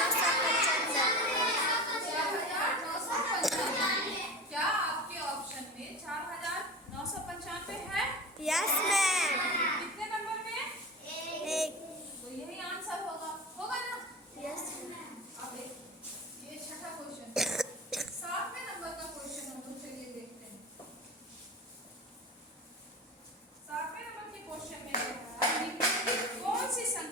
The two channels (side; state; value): both; normal; correlation 0.30